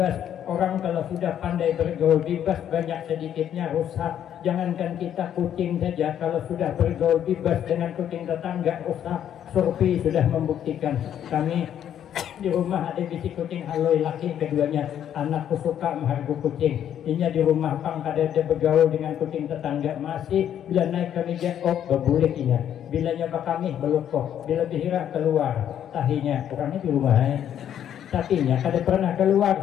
Orang kalau sudah pandai bergaul bebas, banyak sedikitnya rusak. Jangankan kita kucing saja, kalau sudah bergaul bebas dengan kucing tetangga rusak. Survei sudah membuktikan. Kami di rumah ada bisi kucing haloi laki, keduanya anakku suka menghargai kucing. Inya di rumah pang kada ada bergaul dengan kucing tetangga, masih bila naik ke meja berbulik inya. Bila nyoba kami belukok, bila bihira keluar tahinya orangnya di rumah. Tapinya kada pernah keluar,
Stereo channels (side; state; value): right; quieter; 10.0 dB